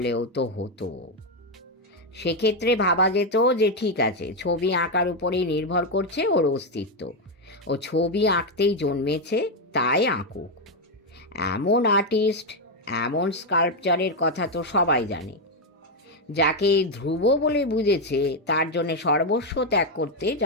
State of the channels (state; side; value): normal; both; correlation 0.04